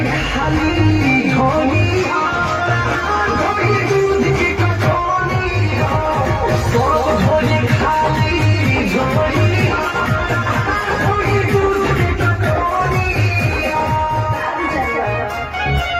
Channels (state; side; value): identical; both; correlation 1.00